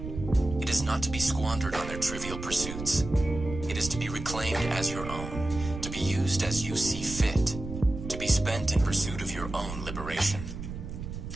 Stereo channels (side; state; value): right; noise; rumble, 8 dB below the sound